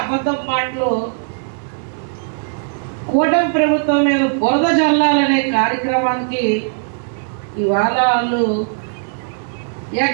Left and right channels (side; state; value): left; silent; 56 dB below the other